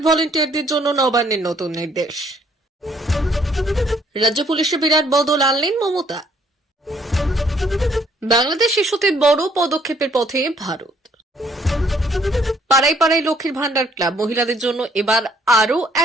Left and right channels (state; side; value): normal; both; correlation 0.65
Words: ভলেন্টিয়ারদের জন্য নবান্নের নতুন নির্দেশ। রাজ্য পুলিশে বিরাট বদল আনলেন মমতা। বাংলাদেশ ইস্যুতে বড় পদক্ষেপের পথে ভারত। পাড়ায় পাড়ায় লক্ষ্মীর ভান্ডার ক্লাব মহিলাদের জন্য এবার আরো